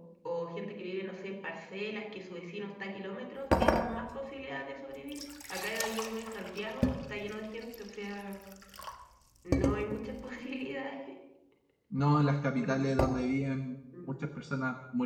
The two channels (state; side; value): identical; both; correlation 1.00